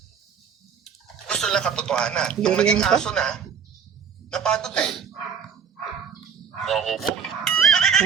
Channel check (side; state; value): left; quieter; 7.0 dB